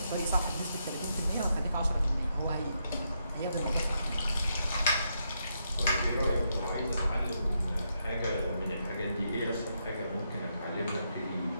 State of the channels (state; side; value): inverted; both; correlation -0.80